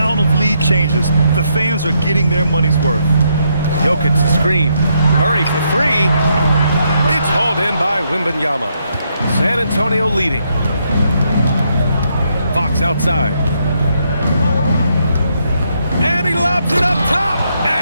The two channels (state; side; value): inverted; both; correlation -0.77